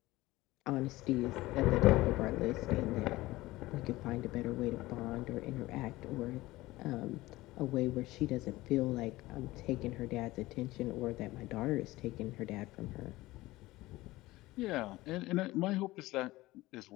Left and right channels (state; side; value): quieter; right; 18.6 dB